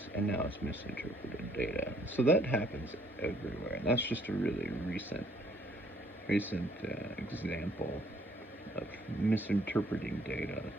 and now it's misinterpreted data. So that happens everywhere, and that's just a really recent example of misinterpreting data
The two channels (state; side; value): normal; both; correlation 0.64